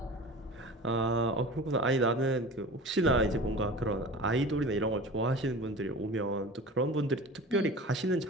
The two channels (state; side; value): normal; both; correlation 0.37